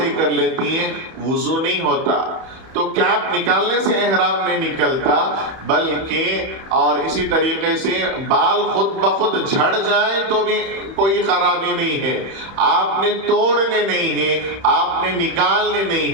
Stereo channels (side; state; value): left; late; 31 ms